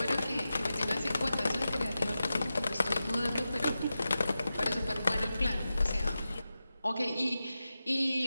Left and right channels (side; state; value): both; inverted; correlation -0.92